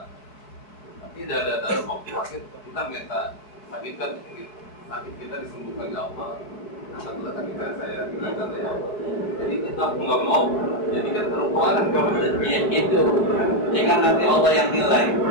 Tapi ada waktu sakit kita minta sakit kita disembuhkan ya Allah. Alhamdulillah sakit saya hilangkan ya Allah. Jadi kita nggak mau jadikan terlupakan ya, itu. Jika nanti Allah yang nilai.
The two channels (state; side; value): late; right; 4.5 ms